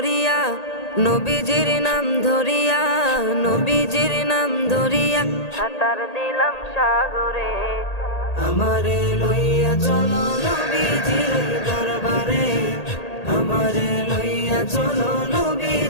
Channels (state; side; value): late; right; 1.8 ms